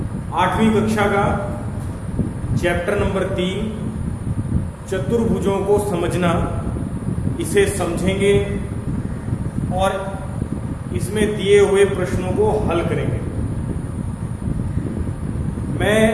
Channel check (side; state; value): both; identical; correlation 1.00